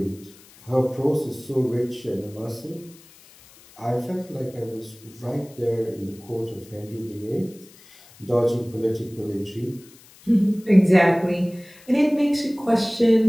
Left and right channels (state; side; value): noise; left; hiss, 24 dB below the sound